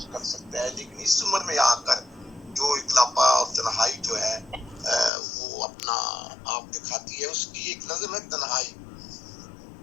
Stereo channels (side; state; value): right; drops out; at 5.1 s